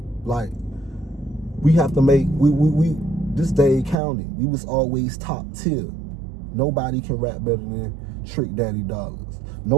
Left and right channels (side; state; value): left; drops out; at 4.0 s